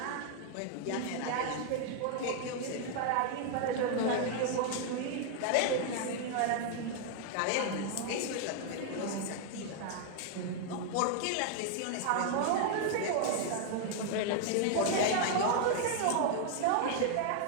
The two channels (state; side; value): different; both; correlation 0.00